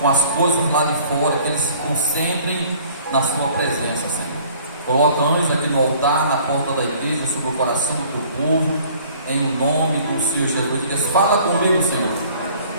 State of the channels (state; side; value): inverted; both; correlation -0.54